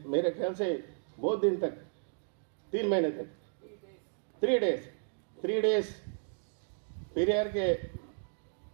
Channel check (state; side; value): silent; left; digital silence